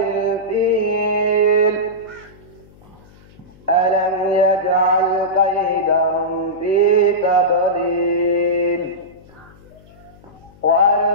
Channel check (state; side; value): noise; left; hum, 25 dB below the sound